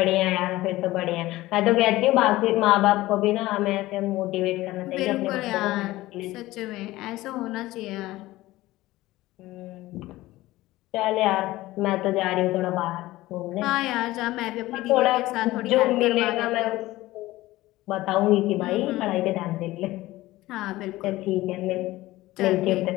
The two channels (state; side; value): quieter; right; 17.6 dB